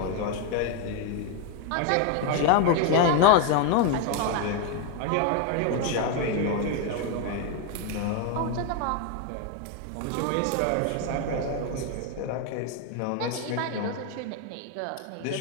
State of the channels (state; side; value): different; both; correlation 0.01